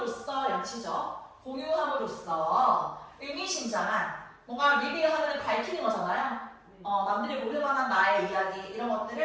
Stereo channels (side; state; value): both; identical; correlation 1.00